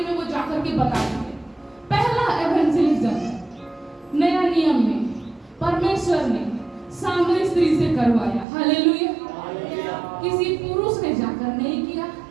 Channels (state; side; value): drops out; left; at 8.5 s